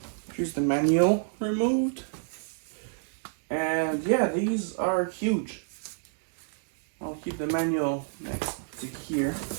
Here's the manual removed. And yeah, these are huge. I'll keep the manual next to here.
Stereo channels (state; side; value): silent; left; digital silence